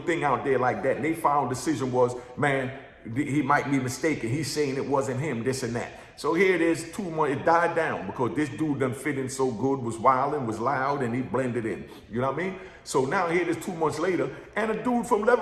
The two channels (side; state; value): both; identical; correlation 1.00